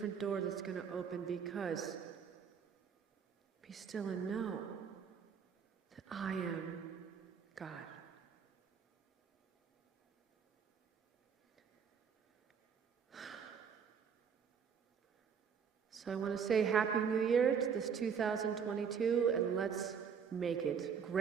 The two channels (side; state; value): left; quieter; 6.9 dB